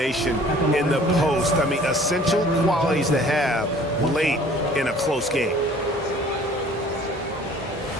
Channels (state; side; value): normal; both; correlation 0.52